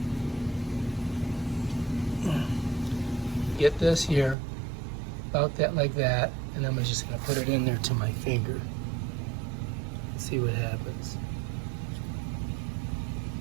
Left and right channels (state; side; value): drops out; left; at 4.4 s